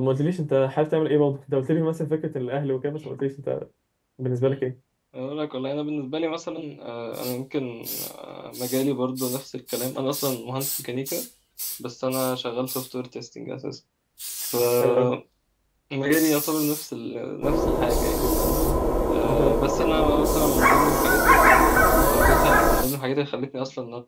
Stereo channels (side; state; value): both; identical; correlation 1.00